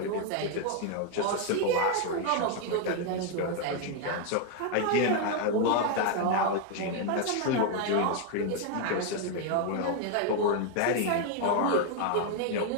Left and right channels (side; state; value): both; different; correlation 0.00